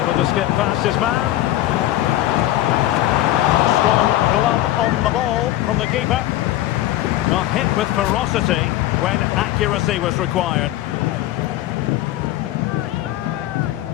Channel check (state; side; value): quieter; right; 14.9 dB